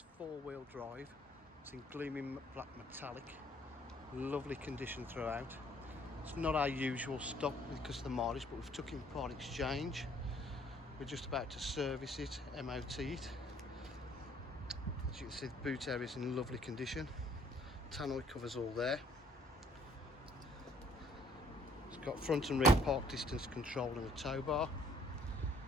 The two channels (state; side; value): normal; both; correlation 0.61